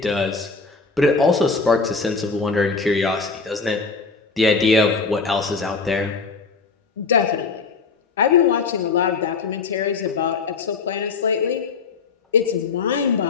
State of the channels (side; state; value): right; quieter; 4.6 dB